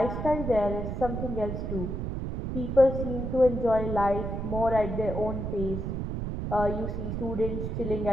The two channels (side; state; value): right; noise; rumble, 3 dB below the sound